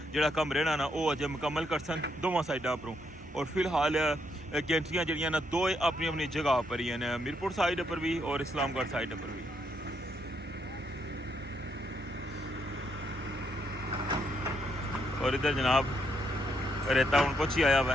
जड़ा कम रहना ना वो अजय मुकम्मल कर सन दोवां साइडा उपरों। और फिलहाल गेंट्रियां जड़ियां ना दो अपनी अपनी जगह पर ही हैं, मीरपुर साइड पर भी और इस्लामगढ़ साइड पर भी। और इधर जनाब रेता हूँ कुछ ही आया हुआ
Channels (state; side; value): normal; both; correlation 0.76